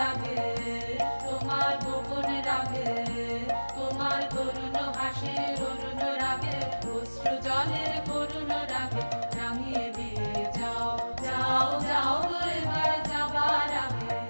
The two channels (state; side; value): inverted; both; correlation -1.00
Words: তোমার গোপন রাগে, তোমার করুণ হাসির অরুণ রাগে, অশ্রু জলের করুণ রাগে রাঙিয়ে দিয়ে যাও, যাও যাও এবার যাবার আগে।